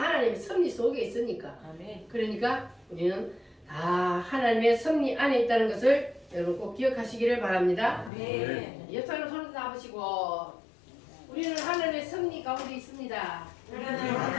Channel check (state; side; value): drops out; right; at 8.1 s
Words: 섭리 속에 있으니까. 아멘. 그러니까 우리는 다 하나님의 섭리 안에 있다는 것을 여러분 꼭 기억하시기를 바랍니다. 아멘. 옆 사람 손을 잡으시고 우리는 하늘의 승리 가운데 있습니다. 우리는